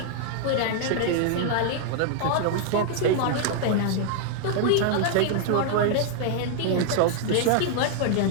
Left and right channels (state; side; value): different; both; correlation -0.01